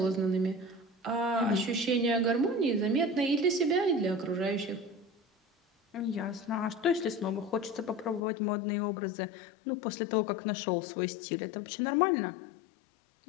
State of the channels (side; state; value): right; drops out; at 8.2 s